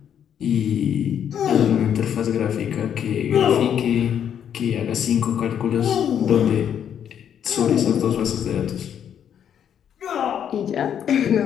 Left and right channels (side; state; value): right; quieter; 9.0 dB